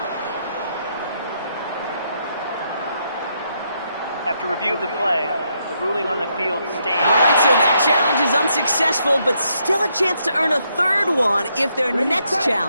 After review of the play, the ruling on the field stands. All right, so that challenge is unsuccessful, but still a chance to earn a third one if their next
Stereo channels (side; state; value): both; inverted; correlation -0.77